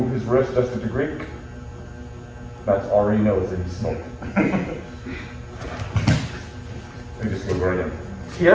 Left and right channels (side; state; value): both; identical; correlation 1.00